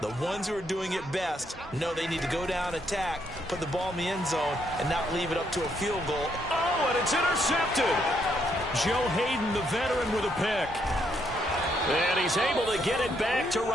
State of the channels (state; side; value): normal; both; correlation 0.74